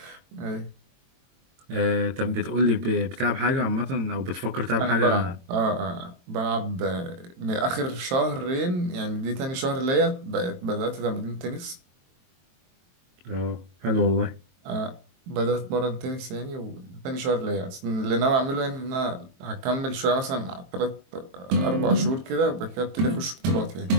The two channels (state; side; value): late; left; 22 ms